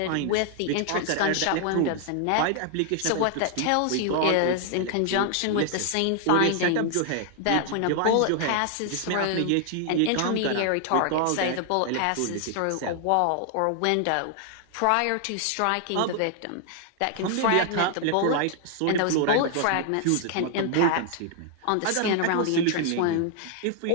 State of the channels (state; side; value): different; both; correlation 0.00